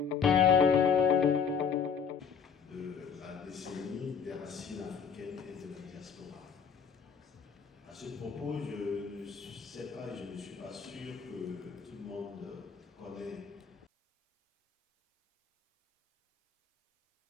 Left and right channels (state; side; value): quieter; right; 6.7 dB